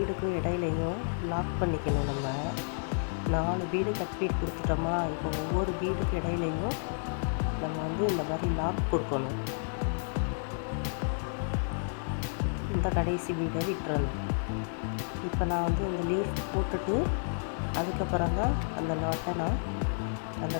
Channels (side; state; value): right; silent; digital silence